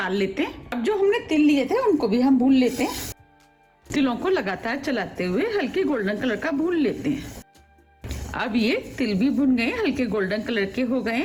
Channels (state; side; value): identical; both; correlation 1.00